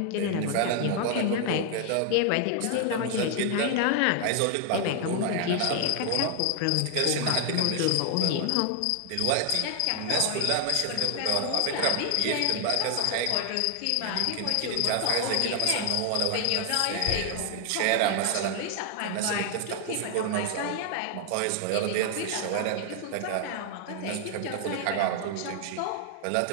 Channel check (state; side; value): different; both; correlation 0.00